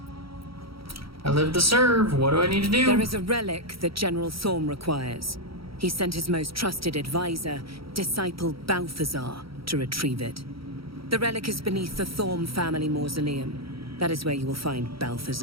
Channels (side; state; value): left; late; 0.75 ms